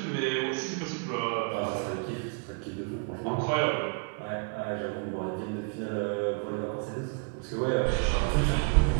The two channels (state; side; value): quieter; left; 37.2 dB